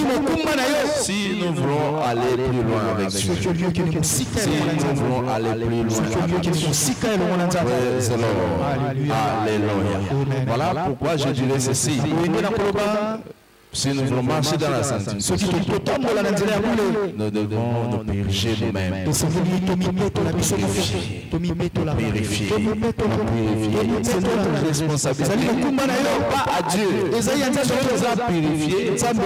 Si nous voulons aller plus loin avec Dieu. Si nous voulons aller plus loin avec Dieu. Alléluia. Voilà pourquoi je dirais ceci. Si nous voulons marcher dans la sanctification, nous devons nous purifier nous-mêmes. Purifier. C'est notre responsabilité. Pas à Dieu. Dieu nous a purifiés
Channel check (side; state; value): both; identical; correlation 1.00